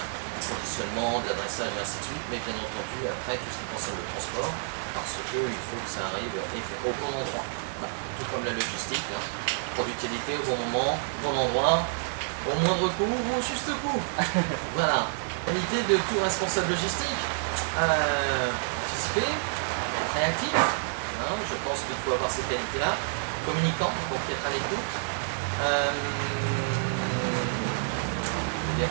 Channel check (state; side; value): silent; left; 59 dB below the other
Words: du conditionnement, de l'adressage et ainsi de suite, mais bien entendu, après, tout ce qui concerne le transport, parce qu'il faut que ça arrive au bon endroit. Bah, tout comme la logistique, hein. Productivité au bon moment, bon endroit, au moindre coût ou au juste coût. Voilà. Qualité de tout responsable logistique. anticiper, être réactif, hein, je pense qu'il faut avoir ces qualités-là, communicant, donc être à l'écoute, je